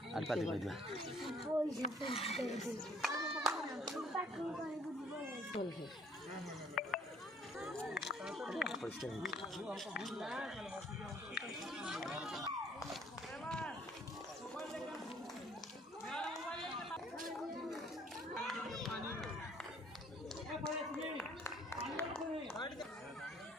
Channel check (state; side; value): normal; both; correlation 0.59